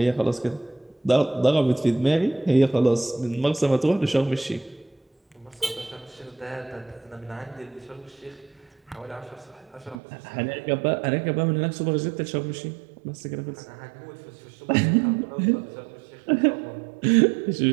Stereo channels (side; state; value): left; drops out; at 10.0 s